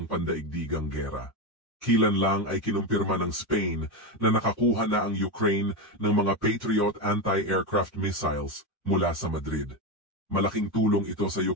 pandaigdigang gera. Kilan lang ay kinumpirma ng Spain na nakakuha na ang Ukraine ng mga Patriot anti-aircraft missiles mula sa Madrid. Malaking tulong ito sa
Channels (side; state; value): both; normal; correlation 0.13